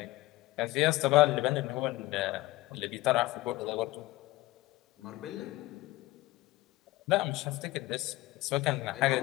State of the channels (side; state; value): right; quieter; 18.6 dB